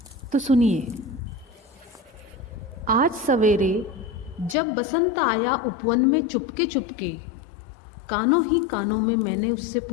तो सुनिए। आज सवेरे जब बसंत आया उपवन में चुपके चुपके, कानों ही कानों में मैंने उससे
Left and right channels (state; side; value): drops out; right; at 4.5 s